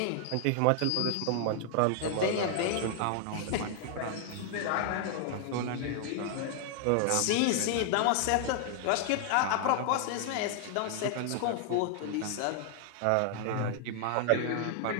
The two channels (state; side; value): different; both; correlation 0.00